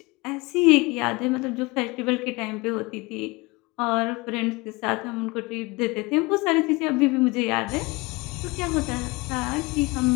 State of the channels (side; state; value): right; quieter; 24.4 dB